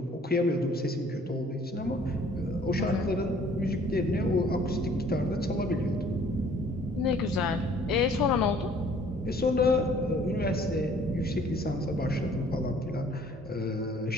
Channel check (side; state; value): both; normal; correlation 0.56